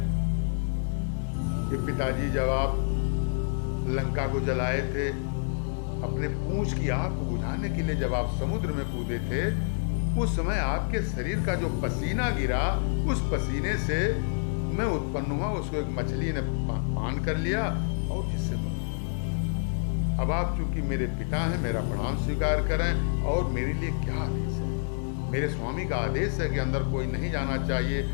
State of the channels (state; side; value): silent; right; 58 dB below the other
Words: कि पिताजी जब आप लंका को जलाए थे, अपने पूंछ की आग को बुझाने के लिए जब आप समुद्र में कूदे थे, उस समय आपके शरीर का जो पसीना गिरा, उस पसीने से मैं उत्पन्न हुआ, उसको एक मछली ने पान कर लिया और जिससे मैं, अब आप चूंकि मेरे पिता हैं, मेरा प्रणाम स्वीकार करें, और मेरे लिए क्या आदेश है। मेरे स्वामी का आदेश है कि अंदर कोई नहीं जाना चाहिए,